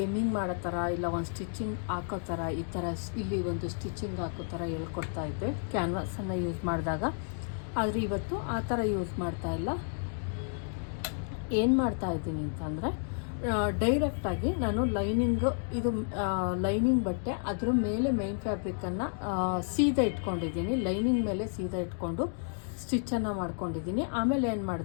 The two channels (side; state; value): right; silent; digital silence